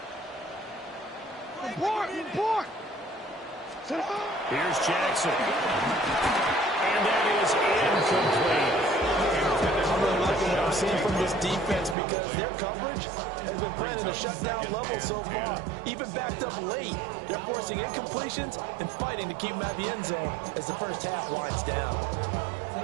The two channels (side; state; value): left; drops out; at 12.0 s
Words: Report. Here's Jackson. And that is incomplete. I'm really liking what I'm seeing from this defense because their coverage has been playing at a shutdown level so far. Even backed up late, they're forcing incompletions and fighting to keep them at the end zone as the first half winds down.